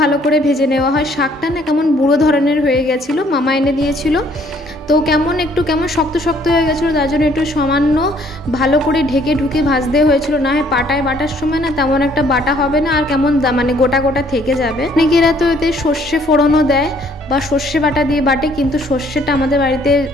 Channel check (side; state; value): both; normal; correlation 0.62